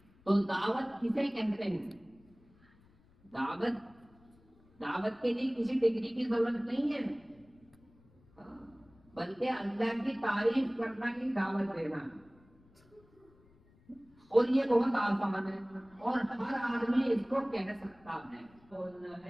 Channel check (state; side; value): noise; left; rumble, 29 dB below the sound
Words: تو دعوت کسے کہتے ہیں؟ دعوت کے لیے کسی ڈگری کی ضرورت نہیں ہے، بلکہ اللہ کی تعریف کرنا ہی دعوت دینا، اور یہ بہت آسان ہے اور ہر آدمی اس کو کہہ سکتا ہے۔ بولنا